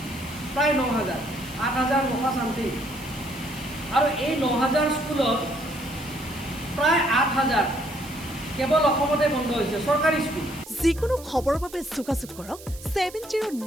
প্ৰায় 9,000, 8,900 চামথিং। আৰু এই 9,000 স্কুলত প্ৰায় 8,000 কেৱল অসমতে বন্ধ হৈছে চৰকাৰী স্কুল। যিকোনো খবৰৰ বাবে যোগাযোগ কৰক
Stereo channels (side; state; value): right; noise; hiss, 18 dB below the sound